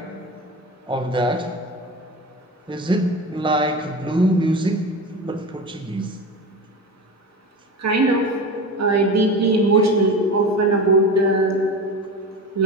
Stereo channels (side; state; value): both; normal; correlation 0.29